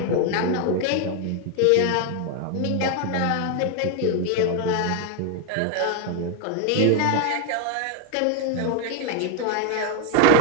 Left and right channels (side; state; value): both; different; correlation 0.01